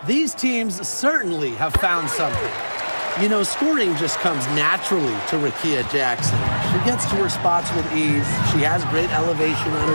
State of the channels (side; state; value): both; inverted; correlation -1.00